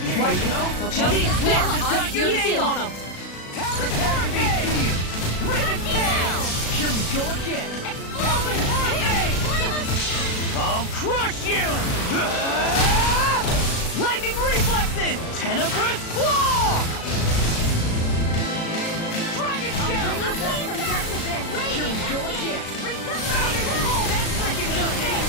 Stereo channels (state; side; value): late; right; 36 ms